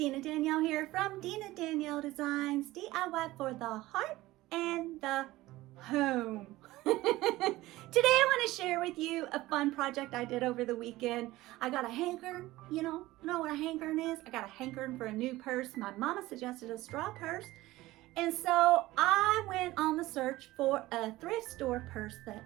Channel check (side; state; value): left; quieter; 17.8 dB